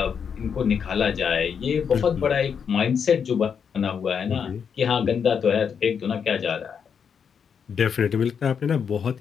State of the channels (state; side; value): quieter; right; 7.0 dB